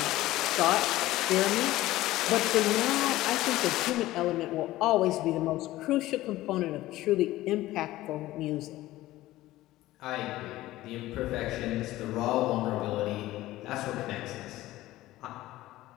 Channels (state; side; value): quieter; right; 16.4 dB